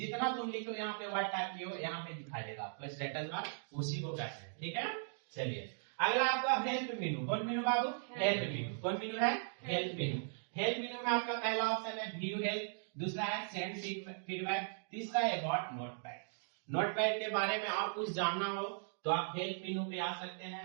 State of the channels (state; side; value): silent; left; digital silence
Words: तुम लिखो यहाँ पे वर्ड टाइप किए हो यहाँ पे दिखाई देगा, तो स्टेटस बार उसी को कहते हैं, ठीक है। चलिए अगला आपका हेल्प मेनू। कौन मेनू बाबू, हेल्प मेनू। कौन मेनू है, हेल्प मेनू। हेल्प मेनू में आपका पहला ऑप्शन है व्यू हेल्प, दूसरा है सेंड फीडबैक, तीसरा है अबाउट नोटपैड। नोटपैड के बारे में और कुछ जानना हो तो आप हेल्प मेनू पे आ सकते